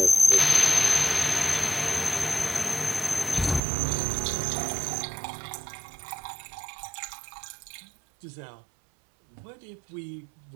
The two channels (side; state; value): left; drops out; at 3.6 s